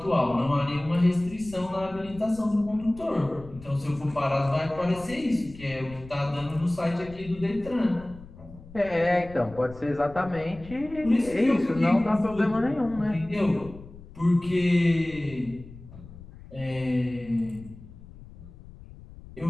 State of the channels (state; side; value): noise; left; rumble, 18 dB below the sound